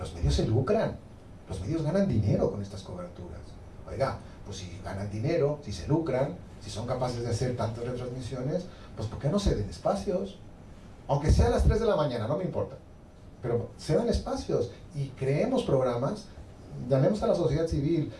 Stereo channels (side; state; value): both; identical; correlation 1.00